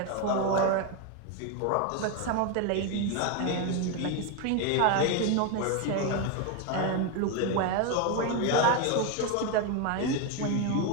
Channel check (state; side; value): different; both; correlation 0.02